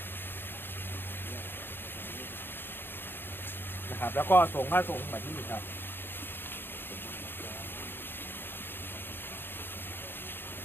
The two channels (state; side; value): late; right; 0.10 ms